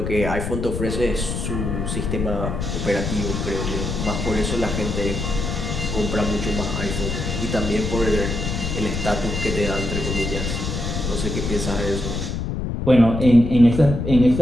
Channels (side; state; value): left; noise; rumble, 3 dB below the sound